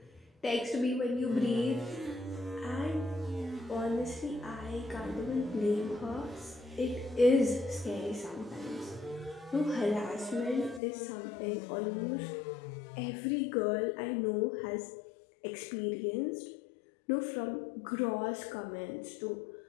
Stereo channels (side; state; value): right; drops out; at 10.8 s